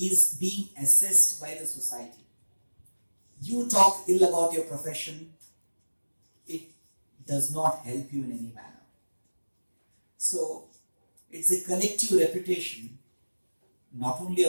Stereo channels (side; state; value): both; inverted; correlation -1.00